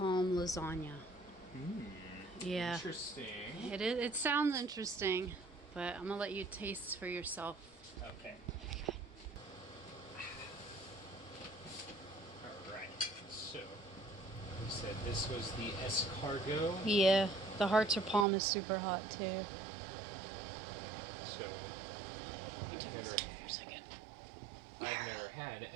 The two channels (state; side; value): drops out; left; at 18.2 s